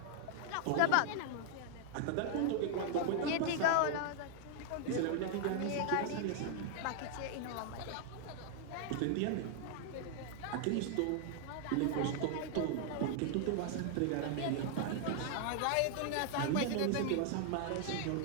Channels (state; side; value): different; both; correlation 0.00